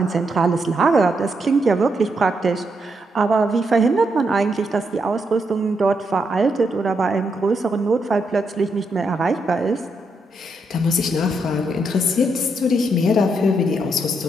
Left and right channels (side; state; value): both; normal; correlation 0.80